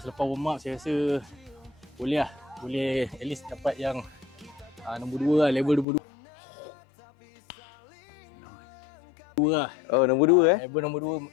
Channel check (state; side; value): drops out; right; at 5.9 s